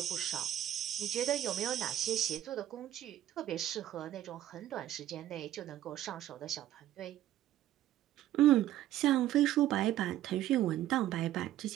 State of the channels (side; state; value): left; quieter; 12.8 dB